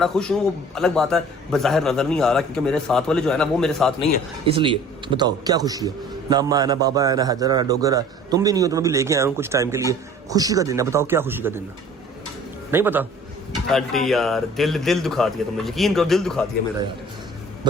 खुश हूँ, वो अलग बात है बज़ाहिर नजर नहीं आ रहा क्योंकि मेरे साथ वाले जो है ना वो मेरे साथ नहीं है। इसलिए बताओ क्या खुशी है? ना अम्मा है ना बाबा है ना हैदर है ना डोगर है, तुम भी नहीं हो, तुम्हें भी लेके आया हूँ कुछ टाइम के लिए। खुशी का दिन है, बताओ क्या खुशी का दिन है? नहीं पता? आंटी यार दिल दुखा दिया तुमने, यकीन करो दिल दुखा दिया मेरा यार।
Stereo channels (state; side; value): normal; both; correlation 0.48